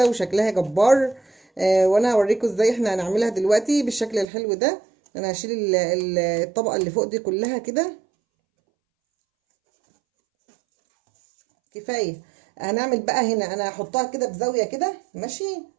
وشكلها جبار. وانا هوريكم ازاي احنا هنعملها دلوقتي بالشكل الحلو ده. انا هشيل الطبقة اللي فوق دي كلها كده. كفاية. هنعمل بقى هنا، انا هحطها كده بزاوية كده. ماشي،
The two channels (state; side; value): drops out; left; at 4.2 s